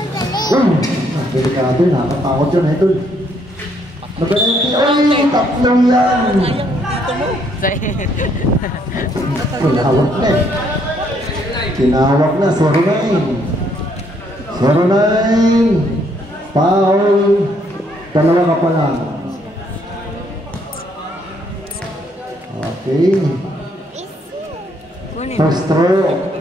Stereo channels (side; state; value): both; normal; correlation 0.69